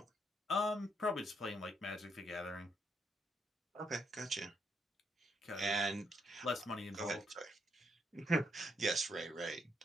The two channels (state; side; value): normal; both; correlation 0.75